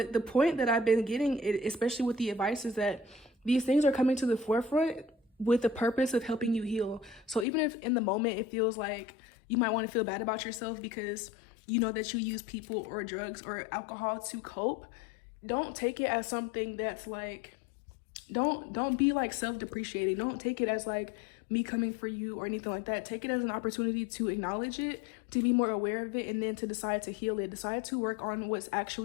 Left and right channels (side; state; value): right; drops out; at 7.5 s